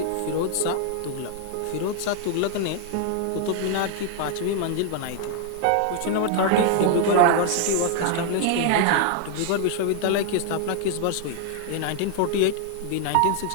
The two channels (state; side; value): different; both; correlation 0.00